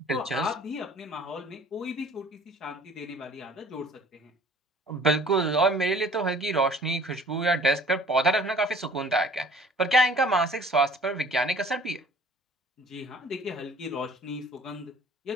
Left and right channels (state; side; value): normal; both; correlation 0.51